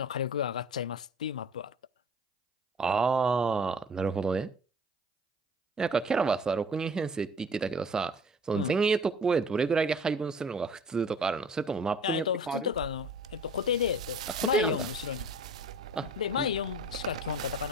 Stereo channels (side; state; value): both; normal; correlation 0.46